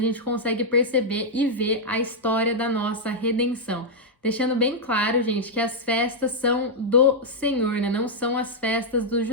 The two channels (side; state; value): both; normal; correlation -0.04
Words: consegue perceber e ver a história da nossa redenção. Deixando bem claro, gente, que as festas são do Senhor, né, não são as festas dos